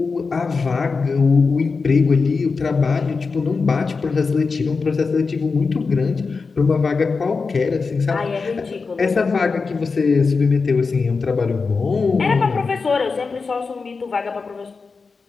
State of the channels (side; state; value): right; quieter; 4.6 dB